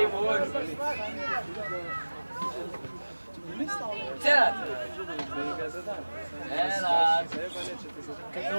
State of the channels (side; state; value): both; inverted; correlation -1.00